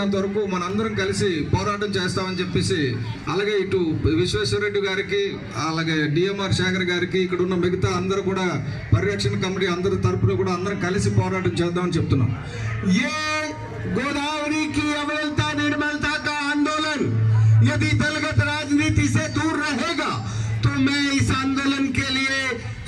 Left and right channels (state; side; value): identical; both; correlation 1.00